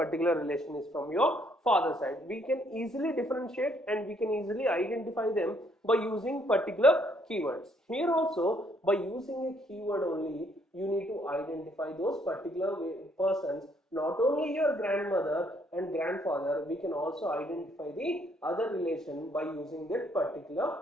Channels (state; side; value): normal; both; correlation 0.68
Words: relation is from your father side. We can easily differentiate and we can easily identify them by using particular keywords. Here also, by using a keyword only, you need to identify those particular persons. Not only your grandmother and grandfather, we can also identify the other relation by using that particular